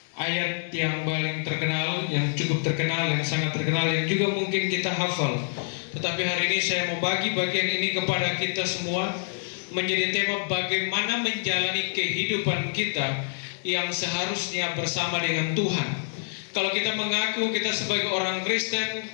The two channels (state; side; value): silent; right; digital silence